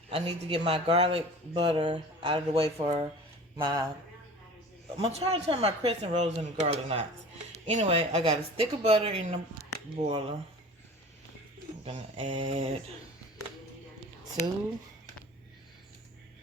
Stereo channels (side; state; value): both; normal; correlation 0.41